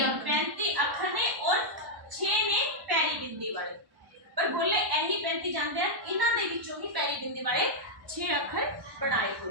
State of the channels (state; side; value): late; left; 1.1 ms